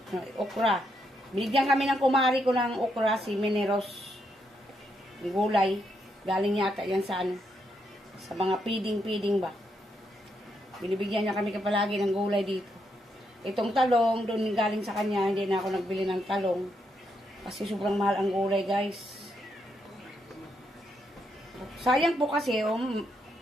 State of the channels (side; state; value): both; normal; correlation 0.79